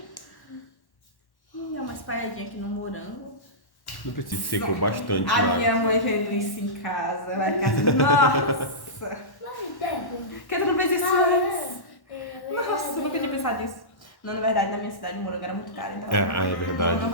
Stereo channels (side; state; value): right; late; 1.1 ms